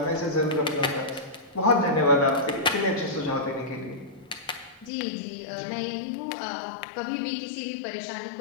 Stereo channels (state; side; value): drops out; right; at 4.9 s